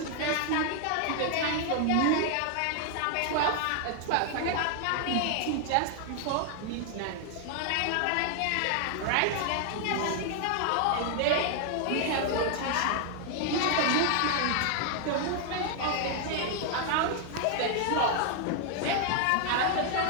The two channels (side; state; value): both; different; correlation 0.00